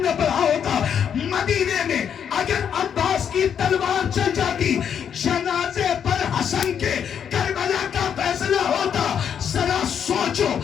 نے پڑھا ہوتا، مدینے میں اگر عباس کی تلوار چل جاتی، جنازے پر حسن کے کربلا کا فیصلہ ہوتا. ذرا سوچو،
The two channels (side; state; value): right; quieter; 8.1 dB